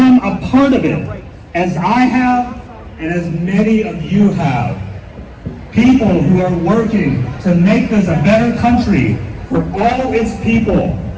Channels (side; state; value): both; identical; correlation 1.00